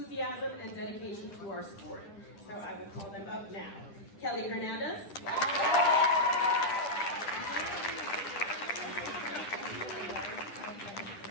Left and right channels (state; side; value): late; right; 10 ms